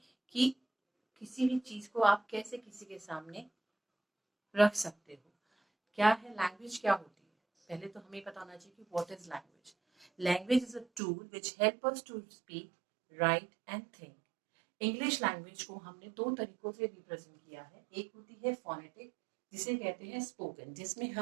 कि किसी भी चीज़ को आप कैसे किसी के सामने रख सकते हो। क्या है लैंग्वेज, क्या होती है। पहले तो हमें पता होना चाहिए कि what is language. Language is a tool which help us to speak, right and think. English language को हमने दो तरीकों से रिप्रेजेंट किया है। एक होती है फोनेटिक, जिसे कहते हैं स्पोकन, जिसमें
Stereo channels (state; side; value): drops out; left; at 11.0 s